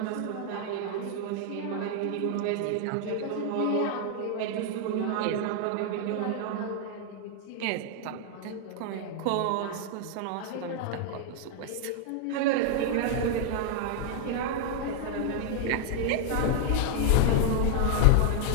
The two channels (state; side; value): different; both; correlation 0.00